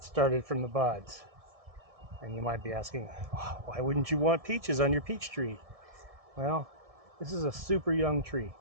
started from the buds. And you might be asking, why wouldn't you want peaches on your peach tree? Well, this is a super young tree,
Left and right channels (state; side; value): late; left; 1.7 ms